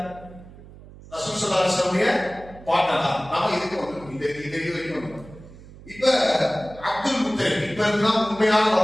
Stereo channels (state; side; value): noise; right; hum, 19 dB below the sound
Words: ரசூல் ஸல்லல்லாஹு அலைஹி வஸல்லம் பாட்டனா. நாம இதுக்கு வந்துட்டோம், இந்த இது வரைக்கும். இப்ப அப்துல் முத்தலிப் இப்ப இருந்தால் உண்மையான